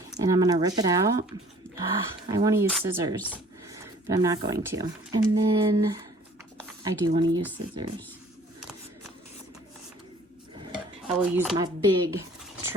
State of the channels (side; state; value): both; normal; correlation 0.53